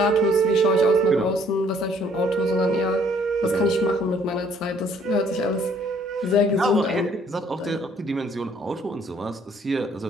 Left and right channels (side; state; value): both; normal; correlation 0.62